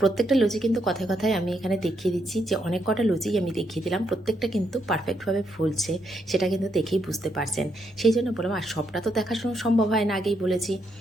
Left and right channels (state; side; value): normal; both; correlation 0.78